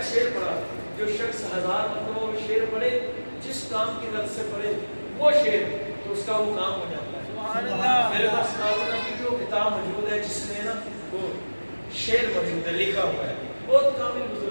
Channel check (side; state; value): both; inverted; correlation -1.00